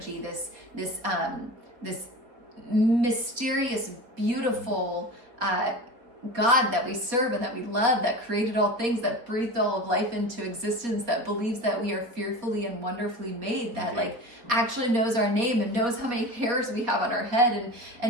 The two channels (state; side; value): late; left; 4.1 ms